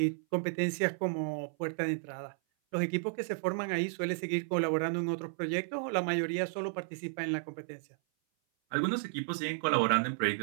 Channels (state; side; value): silent; left; 56 dB below the other